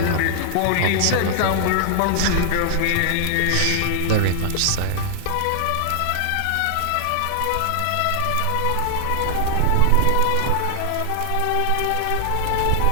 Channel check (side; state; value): both; different; correlation -0.01